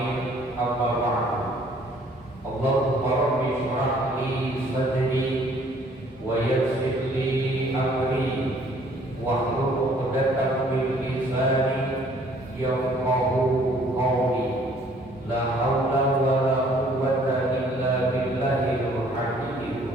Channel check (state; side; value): normal; both; correlation 0.59